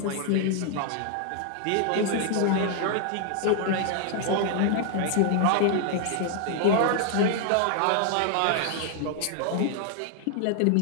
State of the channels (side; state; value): both; different; correlation 0.00